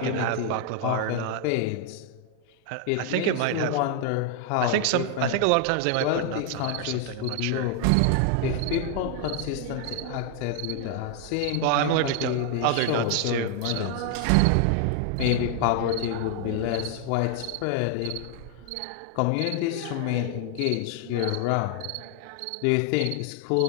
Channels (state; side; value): different; both; correlation 0.00